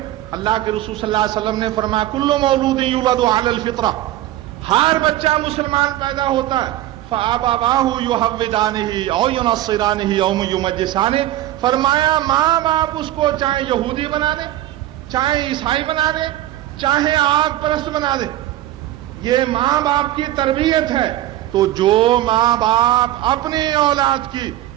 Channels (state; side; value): quieter; left; 14.2 dB